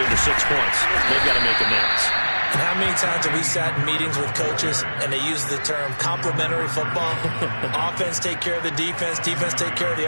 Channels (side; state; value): both; inverted; correlation -1.00